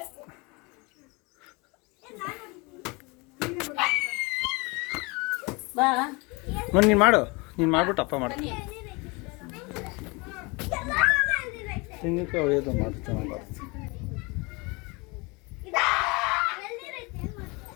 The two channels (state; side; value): quieter; right; 27.3 dB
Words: ಬಾ. ನೀನು ಮಾಡು, ನೀನು ಮಾಡ್ಬಿಟ್ಟು ಅಪ್ಪ ಮಾಡು. ತೆಂಗಿನಕಾಯಿ ಹೊಡೆಯೋದು ಮಾಡು, ಚೆನ್ನಾಗಿ ಬರುತ್ತೆ.